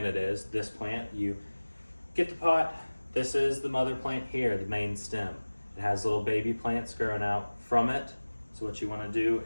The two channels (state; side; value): inverted; both; correlation -1.00